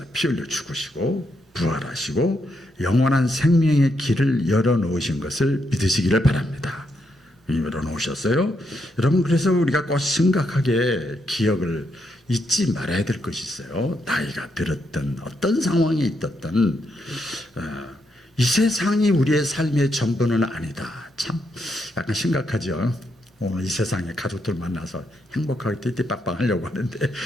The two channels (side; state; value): both; normal; correlation 0.79